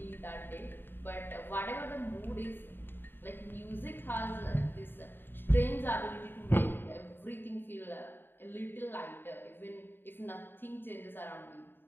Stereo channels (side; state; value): right; late; 0.098 ms